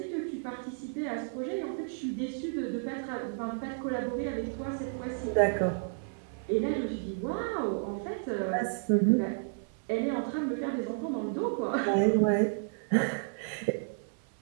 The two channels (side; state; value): left; silent; 57 dB below the other